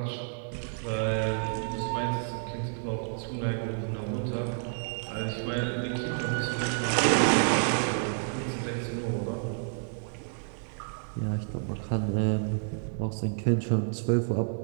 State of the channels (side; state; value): left; silent; 58 dB below the other